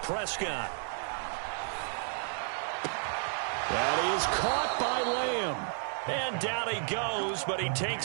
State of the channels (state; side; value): silent; left; 56 dB below the other